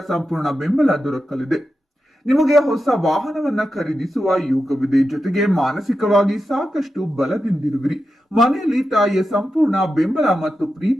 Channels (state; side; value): normal; both; correlation 0.90